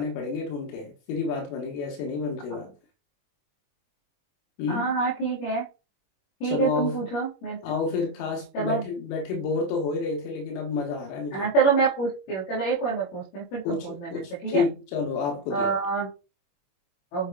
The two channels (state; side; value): late; right; 21 ms